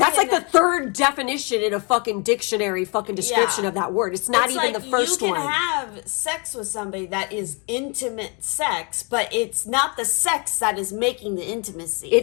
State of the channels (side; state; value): right; quieter; 33.2 dB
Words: like the third definition in a fucking dictionary, fucking description of that word. It's not even the first one. You can have sex with somebody that is intimate sex, but it's not the sex that is making the intimacy.